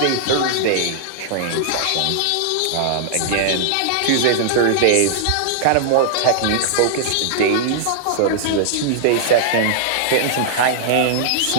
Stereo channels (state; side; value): different; both; correlation -0.01